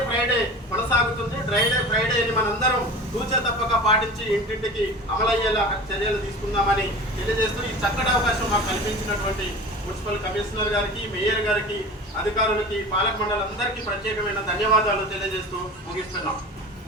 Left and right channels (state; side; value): normal; both; correlation 0.36